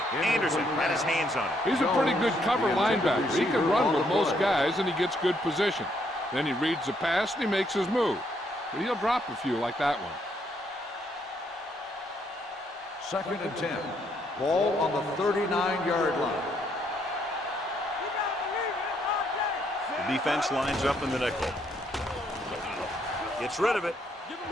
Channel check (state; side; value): normal; both; correlation 0.72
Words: Anderson had his hands on it. He's a pretty good cover linebacker. He can run with most guys, and he gets good position. Then he reads the pass, and he makes his move. But he'll drop a few like that one. 2nd and 10. Ball on the 39-yard line. The defense lines up in the nickel. Gets rid of it.